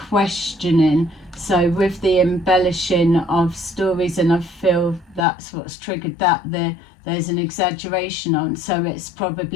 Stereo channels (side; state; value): right; drops out; at 5.2 s